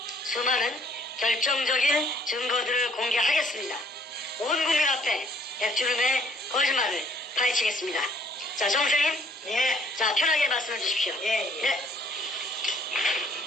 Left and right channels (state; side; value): normal; both; correlation 0.62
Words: 수많은 결정적인 증거들을 공개하겠습니다. 온 국민 앞에 백주름의 거짓말을 파헤치겠습니다. 자, 정선생님. 예. 자, 편하게 말씀해 주십시오. 예. 네.